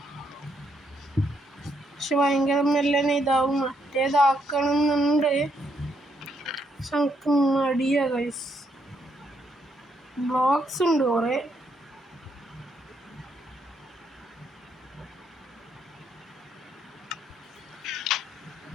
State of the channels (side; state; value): both; normal; correlation 0.75